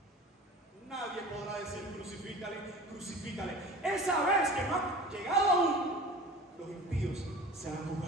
nadie podrá decir crucifícale. Esa vez que no ha llegado aún, los impíos serán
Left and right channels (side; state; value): both; normal; correlation 0.39